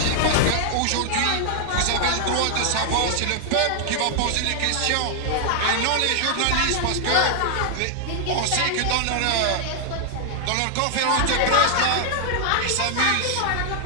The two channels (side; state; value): both; different; correlation 0.00